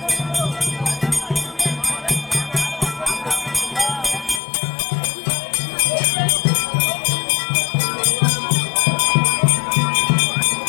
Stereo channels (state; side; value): drops out; right; at 4.4 s